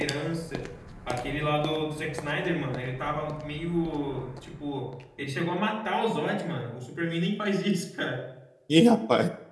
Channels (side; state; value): both; identical; correlation 1.00